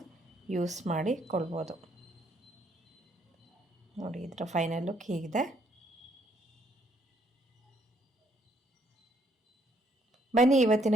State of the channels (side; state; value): both; normal; correlation 0.69